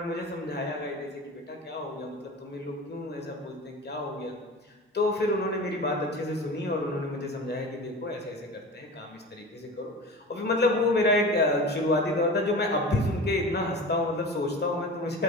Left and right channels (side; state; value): both; normal; correlation 0.34